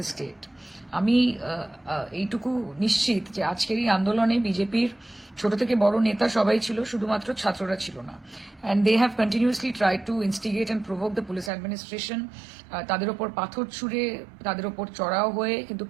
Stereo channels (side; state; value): left; drops out; at 11.5 s